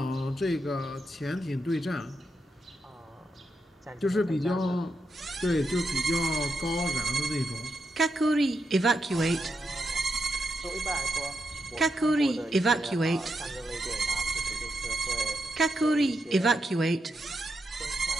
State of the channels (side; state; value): both; normal; correlation 0.84